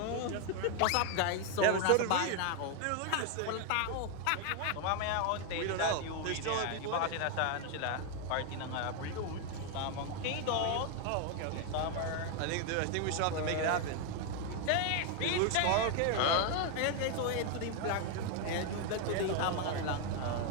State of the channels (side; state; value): both; different; correlation 0.01